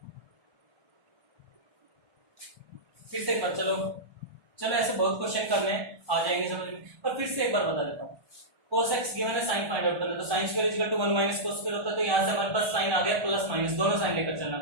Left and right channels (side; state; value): left; late; 1.1 ms